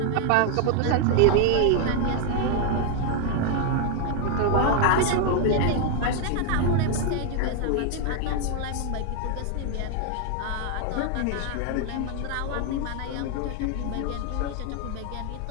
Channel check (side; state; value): both; different; correlation 0.00